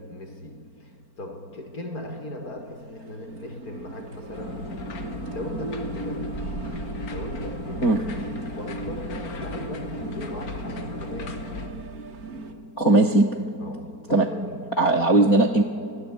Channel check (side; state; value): right; late; 4.4 ms